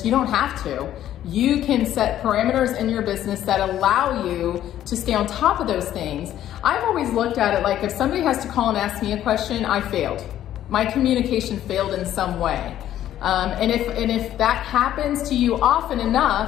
you don't have to. You can set parameters in your business that allow you to stay on top of those things. I've always looked at it like, if somebody has to call and ask me a question, I failed. My communication failed in some way. And if that happens to you often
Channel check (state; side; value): quieter; right; 11.9 dB